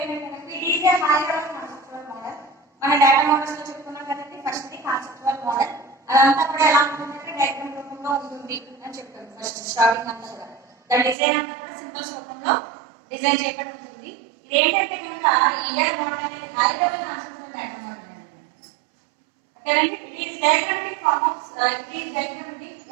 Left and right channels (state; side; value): drops out; left; at 11.2 s